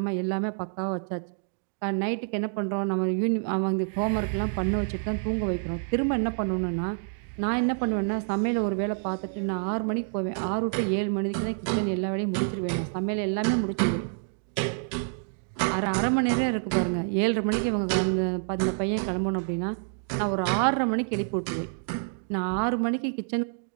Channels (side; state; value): left; silent; digital silence